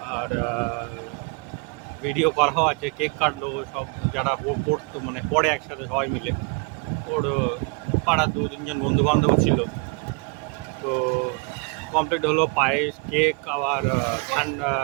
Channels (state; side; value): quieter; left; 33.8 dB